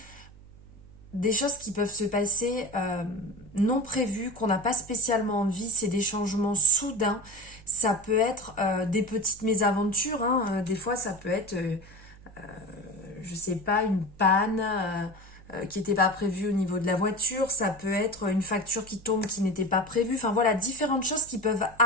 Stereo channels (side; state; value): right; noise; hum, 21 dB below the sound